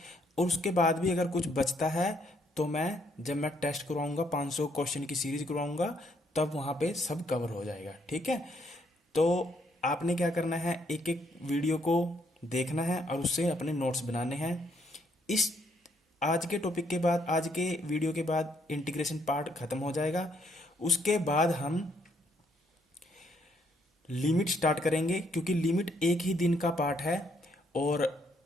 और उसके बाद भी अगर कुछ बचता है तो जब मैं टेस्ट करवाऊंगा, 500 क्वेश्चन की सीरीज करवाऊंगा, तब वहाँ पे सब कवर हो जाएगा। ठीक है। तो आपने क्या करना है, एक एक वीडियो को देखना है और उससे अपने नोट्स बनाने हैं। इस आज के टॉपिक के बाद, आज के वीडियो के बाद इंटीग्रेशन पार्ट खत्म हो जाएगा। उसके बाद हम लिमिट स्टार्ट करेंगे, क्योंकि लिमिट एक ही दिन का पार्ट है और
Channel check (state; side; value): normal; both; correlation 0.71